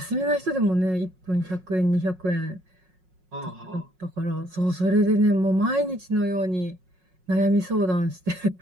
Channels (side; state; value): left; late; 5.5 ms